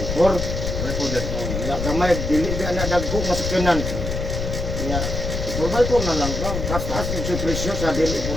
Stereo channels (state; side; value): noise; left; rumble, 3 dB below the sound